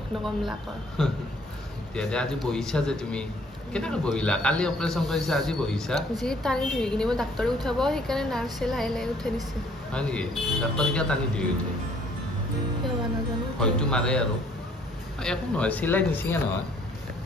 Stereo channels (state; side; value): normal; both; correlation 0.61